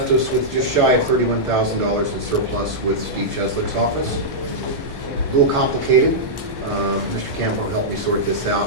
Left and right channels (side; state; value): left; late; 1.3 ms